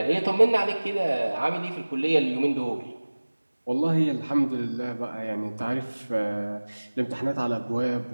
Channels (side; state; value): both; inverted; correlation -1.00